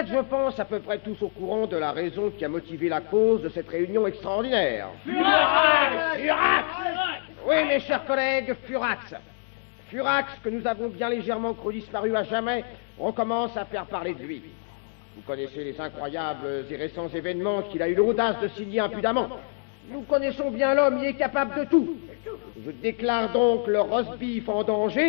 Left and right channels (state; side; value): silent; right; 61 dB below the other